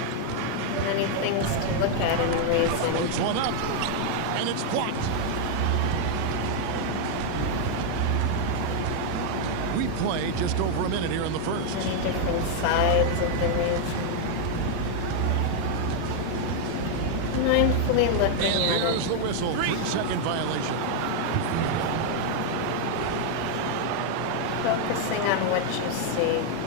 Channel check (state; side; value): different; both; correlation 0.00